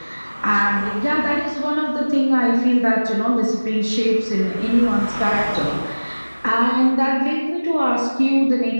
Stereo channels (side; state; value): both; inverted; correlation -1.00